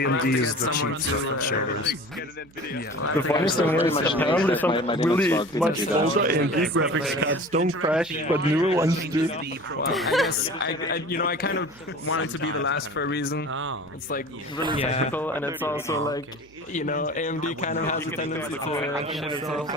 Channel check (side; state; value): right; noise; hum, 28 dB below the sound